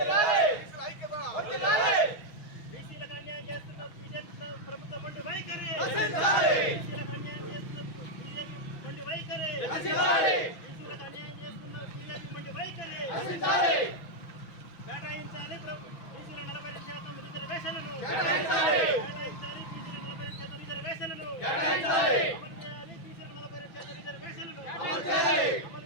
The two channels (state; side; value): late; right; 6.1 ms